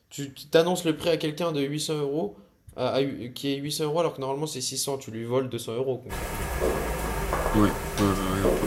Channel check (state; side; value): identical; both; correlation 1.00